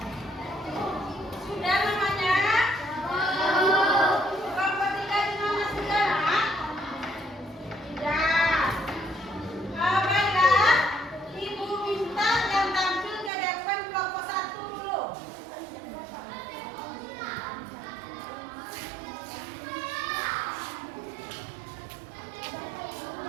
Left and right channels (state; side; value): drops out; left; at 13.3 s